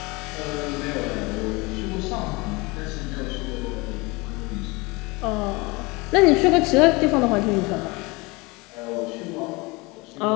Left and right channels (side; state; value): right; quieter; 25.3 dB